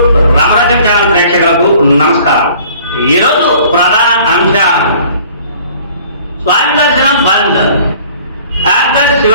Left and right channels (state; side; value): inverted; both; correlation -0.52